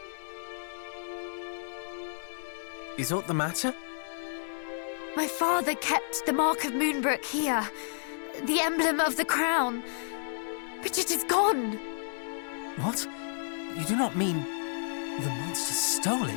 Is aught the matter? My father kept the mark of Moonbrook here, the emblem of the crown, but it is gone. What? You do not mean the monster stole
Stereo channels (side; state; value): right; silent; digital silence